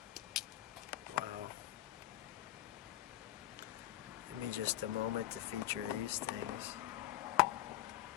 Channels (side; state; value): right; quieter; 14.6 dB